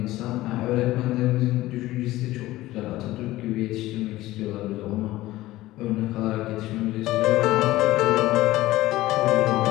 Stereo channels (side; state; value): right; quieter; 16.9 dB